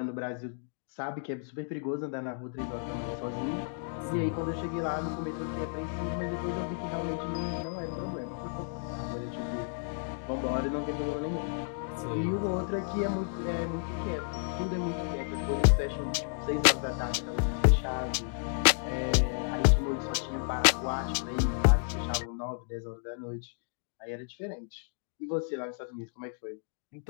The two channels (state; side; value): silent; right; digital silence